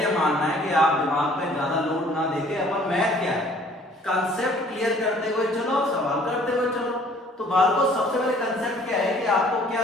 मानना है कि आप दिमाग पे ज्यादा लोड ना देके अपन मैथ क्या है कंसेप्ट क्लियर करते हुए चलो, सवाल करते हुए चलो। तो बाल को सबसे पहले कंसेप्ट क्या है कि आपको क्या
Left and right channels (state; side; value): normal; both; correlation 0.55